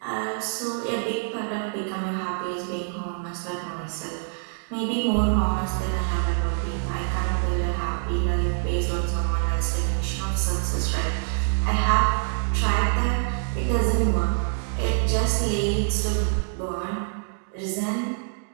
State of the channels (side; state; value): left; silent; digital silence